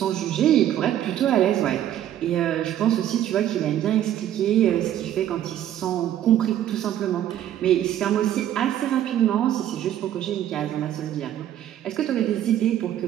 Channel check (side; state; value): left; quieter; 11.5 dB